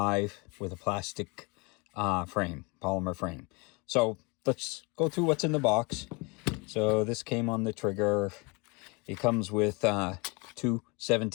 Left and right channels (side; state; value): right; quieter; 28.9 dB